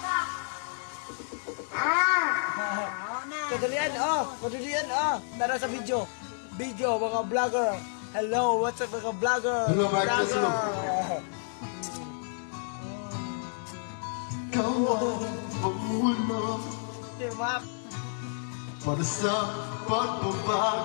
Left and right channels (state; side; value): silent; right; digital silence